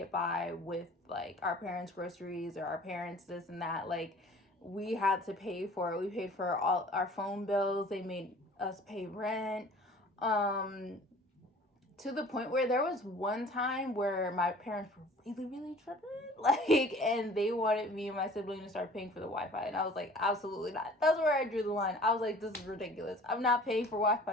by with like our parents' groceries or our parents this and that. Like we had to pay for it. We paid for all our phone bills. They made us pay rent. To the point where there was one time where my parents were really, really tripping, like, and they wanted me and my sibling to start paying for the Wi-Fi, and I was like, absolutely not. That's where I drew the line. I was like, this is ridiculous. I'm not paying for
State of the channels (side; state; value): both; normal; correlation 0.48